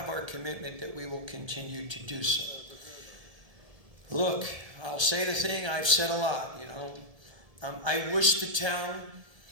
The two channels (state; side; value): late; left; 1.7 ms